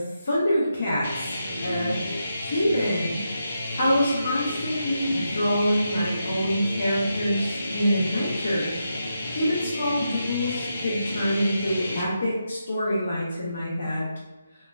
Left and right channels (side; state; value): both; inverted; correlation -0.84